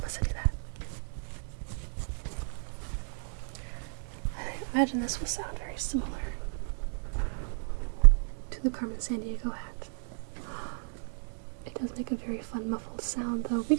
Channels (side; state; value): left; silent; 56 dB below the other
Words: I do that. I imagine this will sound very similar to the Carmen Sandiego hat. It does make a very fun muffled sound though